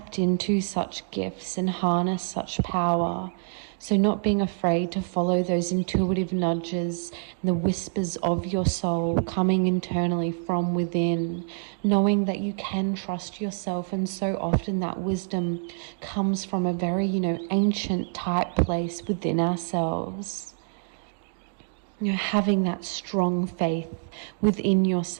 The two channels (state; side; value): silent; left; 59 dB below the other